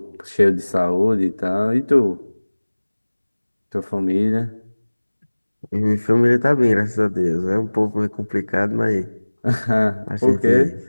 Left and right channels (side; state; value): both; inverted; correlation -1.00